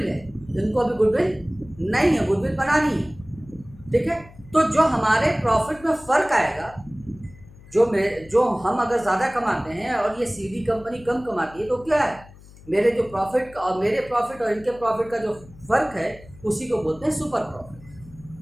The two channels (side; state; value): left; noise; hum, 21 dB below the sound